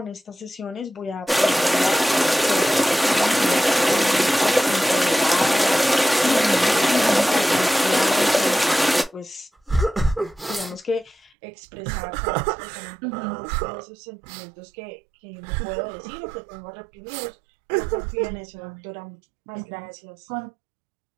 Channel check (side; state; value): left; drops out; at 11.4 s